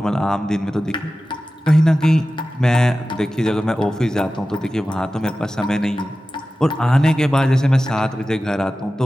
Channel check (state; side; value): normal; both; correlation 0.95